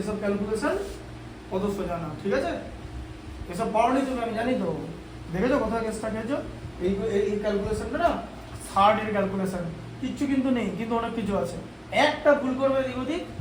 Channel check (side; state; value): both; identical; correlation 1.00